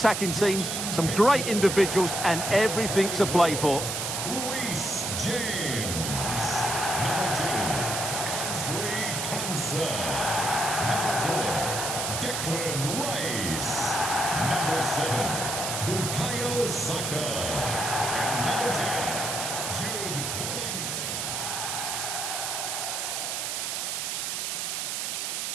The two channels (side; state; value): right; noise; hiss, 2 dB below the sound